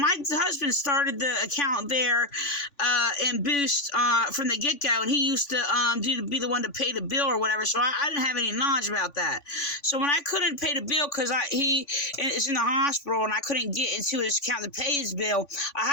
husband started the account there in Boost from the get-go, and he used to be the one to pay the bill or whatever, so I didn't have any knowledge about that. So when I couldn't pay the bill because he is in the hospital and I couldn't get into his account to pay his bill, I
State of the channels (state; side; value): late; right; 3.5 ms